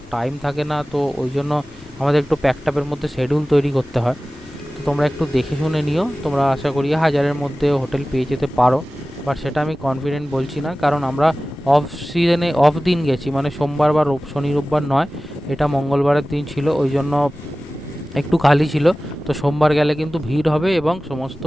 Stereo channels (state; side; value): noise; left; rumble, 22 dB below the sound